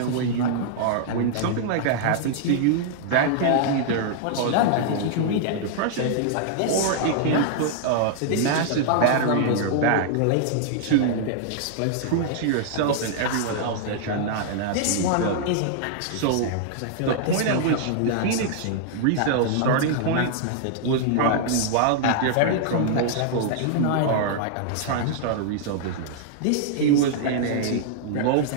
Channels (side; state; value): both; different; correlation -0.01